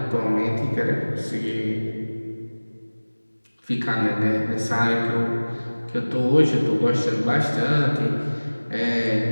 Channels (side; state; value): both; inverted; correlation -1.00